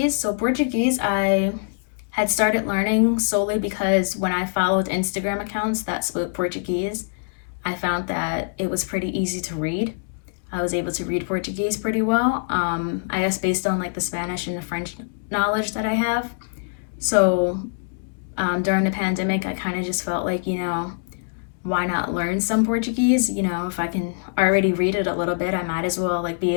So Portuguese, I had started learning solely because when I followed Instagram accounts that spoke Portuguese, I found that it was pretty easy to read. I was able to read Portuguese pretty well, I guess based on like the Spanish and the French knowledge that I have. So during the pandemic, I kind of just felt like, you know, why not learn some Portuguese? You know, if I can already read it a little bit, I might as well like be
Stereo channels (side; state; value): right; silent; digital silence